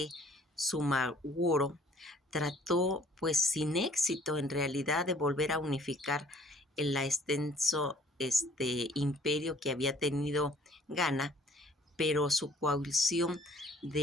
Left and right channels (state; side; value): normal; both; correlation 0.55